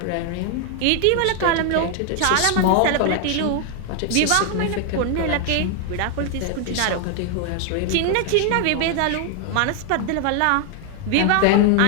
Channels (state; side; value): different; both; correlation 0.00